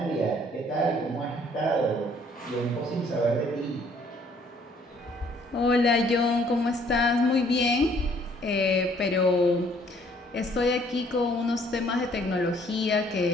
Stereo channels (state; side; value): normal; both; correlation 0.61